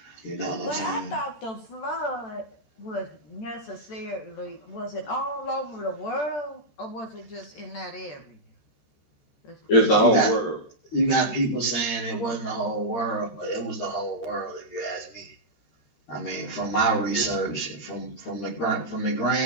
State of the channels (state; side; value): late; right; 14 ms